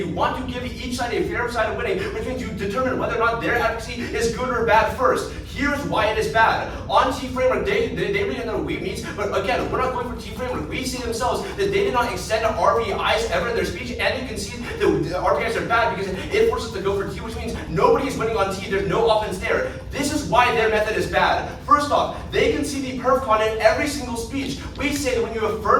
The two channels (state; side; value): identical; both; correlation 1.00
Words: want to give each side a fair side of winning, which means you determine whether or not their advocacy is good or bad first. Here's why it is bad. On T framework, they really know we means, but again, we're not going for T framework. We see themselves that they did not extend to RPIs ever in their speech, and you can see the RPIs are bad because it forces us to go for T, which means nobody is winning on T. There's no offense there. This is why their method is bad. First off, they can see the perf con in every single speech. We say that when you